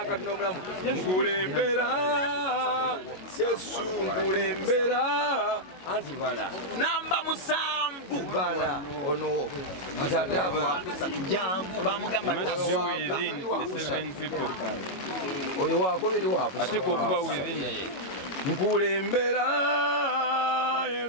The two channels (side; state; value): right; late; 22 ms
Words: Katonda omulamu nkulembera Yesu nkulembera anti bala namba musanvu bala ono atataba jangu bamugamba oyo wakubiri wakusatu ate kuba within nkulembera